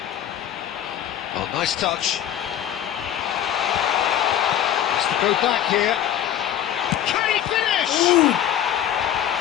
Oh, nice touch. Has to go back here. Can he finish? Ooh.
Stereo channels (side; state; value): right; quieter; 10.8 dB